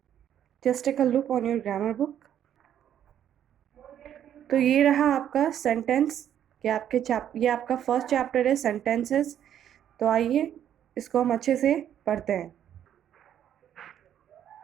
Just take a look on your grammar book. तो ये रहा आपका सेंटेंस कि ये आपका फर्स्ट चैप्टर है सेंटेंसेस। तो आइए इसको हम अच्छे से पढ़ते हैं।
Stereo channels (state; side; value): quieter; left; 10.2 dB